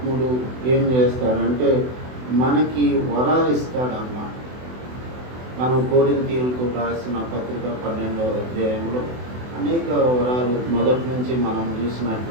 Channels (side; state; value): left; late; 24 ms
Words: ఏం చేస్తాడంటే మనకి వరాలు ఇస్తాడన్నమాట. మనం కొరింథీయులకు రాసిన పత్రిక 12వ అధ్యాయంలో అనేక వరాలు మొదటి నుంచి మనం